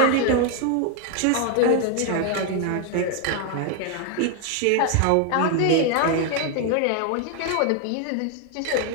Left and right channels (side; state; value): both; different; correlation 0.00